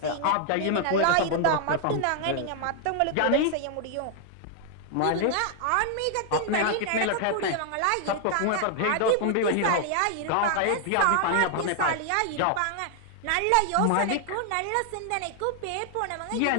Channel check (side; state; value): both; different; correlation 0.00